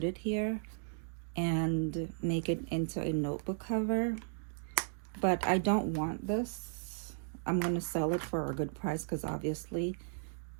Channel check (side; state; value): left; silent; digital silence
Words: it here and make it into a notebook cover. But I don't want this. I'm going to sell it for a good price, because obviously